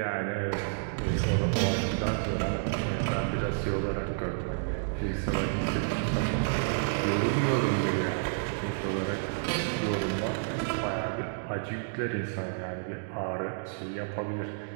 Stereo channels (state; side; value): silent; left; digital silence